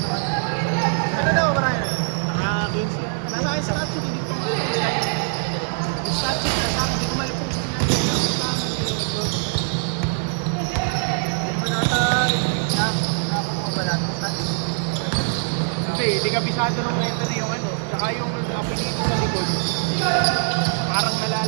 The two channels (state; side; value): silent; left; digital silence